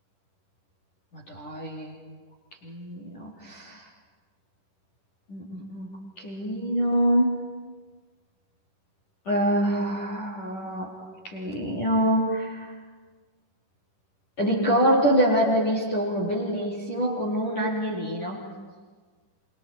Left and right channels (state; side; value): late; right; 10 ms